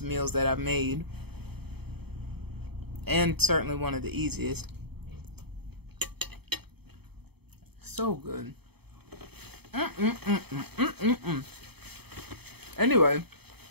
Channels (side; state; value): left; late; 0.97 ms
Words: meals that I've made. And certainly one of the easiest. So good. Anyway.